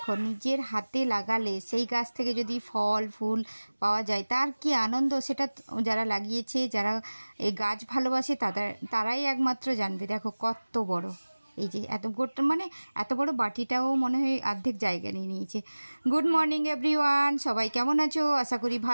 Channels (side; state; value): both; inverted; correlation -1.00